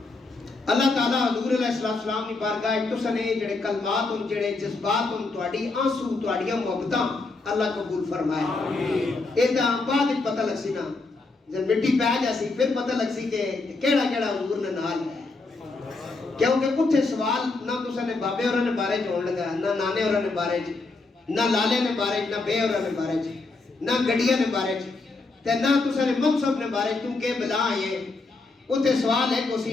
اللہ تعالیٰ حضور علیہ السلام کی بارگاہ تساں نے جڑے کلمات ان جڑے جذبات ان تواڈی آنسو تواڈیاں محبتاں اللہ قبول فرمائے۔ ایدا بعد پتہ لگ سی نا، جب مٹی پہ جاسی پھر پتہ لگ سی کہ کیڑا کیڑا حضور نے نال ہے، کیونکہ اتھے سوال نہ تساں نے بابے ہوراں نے بارے چ ہون لگا، نہ نانے ہوراں نے بارے چ، نہ لالے نے بارے چ، نہ بے ہوراں نے بارے چ، نہ گڈیاں نے بارے چ، تے نہ تساں نے منصب نے بارے چ، کیونکہ بلا یہ اتھے سوال ہے کہ اسی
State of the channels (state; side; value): quieter; right; 3.6 dB